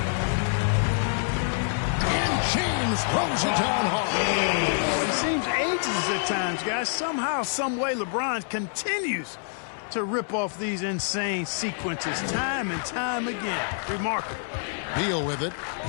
And James throws it down hard. It seems ages at times, guys. Somehow, some way, LeBron continues to rip off these insane sequences time and time again. Remarkable. Beal with it.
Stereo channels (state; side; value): silent; right; 60 dB below the other